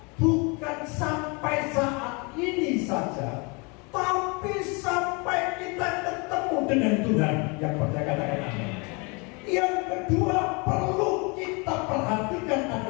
bukan sampai saat ini saja, tapi sampai kita ketemu dengan Tuhan. Yang percaya katakan amin. Yang kedua perlu kita perhatikan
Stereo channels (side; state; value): right; quieter; 30.2 dB